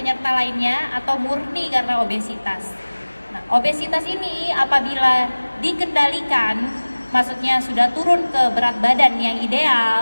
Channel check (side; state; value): both; inverted; correlation -1.00